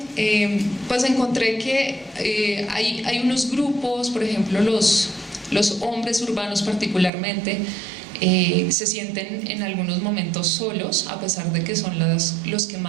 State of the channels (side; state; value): left; drops out; at 7.1 s